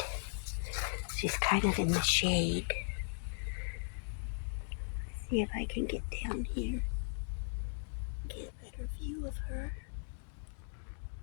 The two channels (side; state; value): right; silent; digital silence